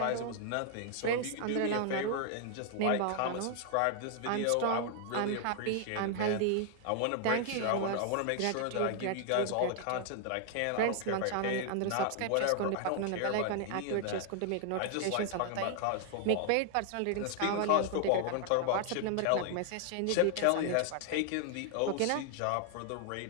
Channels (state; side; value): different; both; correlation 0.00